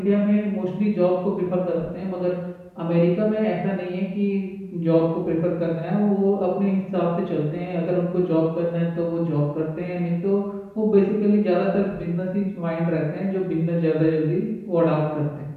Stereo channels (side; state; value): both; identical; correlation 1.00